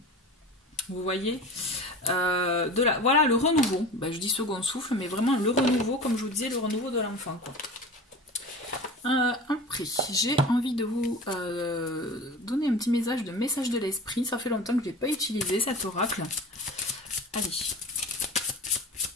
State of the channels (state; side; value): normal; both; correlation 0.34